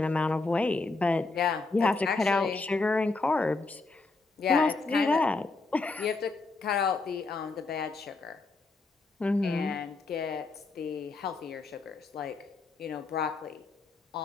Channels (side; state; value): right; quieter; 3.7 dB